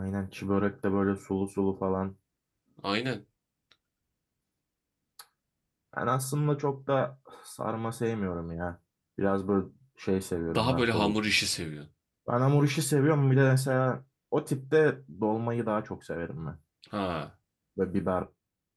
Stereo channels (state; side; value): identical; both; correlation 1.00